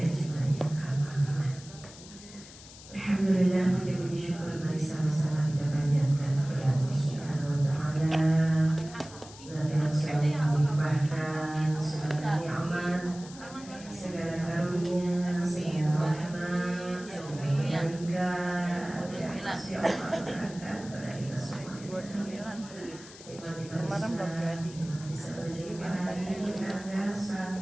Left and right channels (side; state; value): left; noise; hiss, 18 dB below the sound